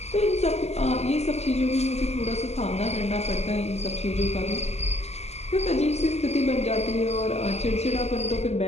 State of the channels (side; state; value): right; late; 0.32 ms